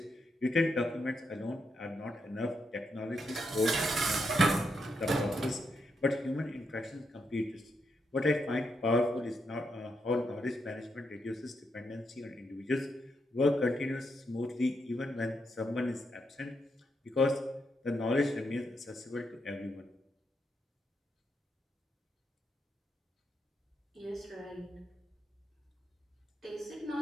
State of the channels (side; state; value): both; normal; correlation 0.81